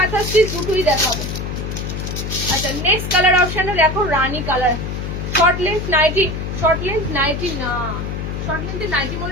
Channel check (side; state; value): left; noise; hum, 5 dB below the sound